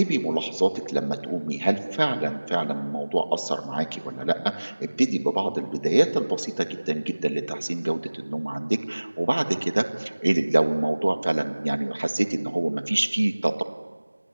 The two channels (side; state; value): both; inverted; correlation -1.00